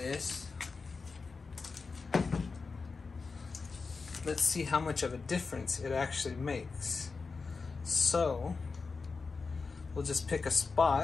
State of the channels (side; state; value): right; quieter; 4.5 dB